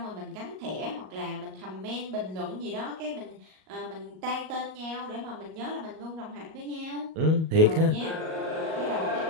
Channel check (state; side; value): late; left; 38 ms